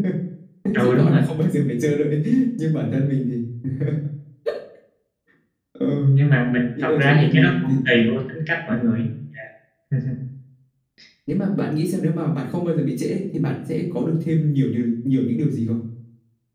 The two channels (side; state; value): both; identical; correlation 1.00